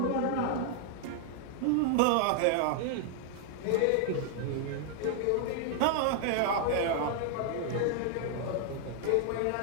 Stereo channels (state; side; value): different; both; correlation 0.00